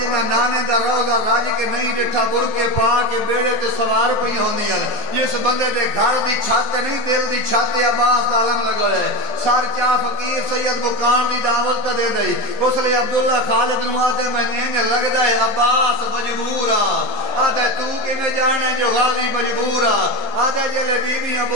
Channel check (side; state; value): right; late; 14 ms